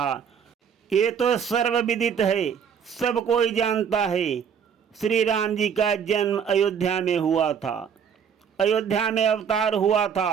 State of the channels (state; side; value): quieter; left; 7.4 dB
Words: ये तो सर्वविदित है, सब कोई जानता है। श्री राम जी का जन्म अयोध्या में हुआ था। अयोध्या में अवतार हुआ